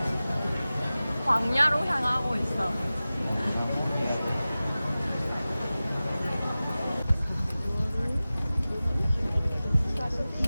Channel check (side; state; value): both; inverted; correlation -0.96